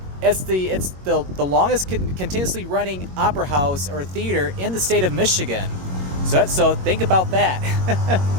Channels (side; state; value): left; late; 21 ms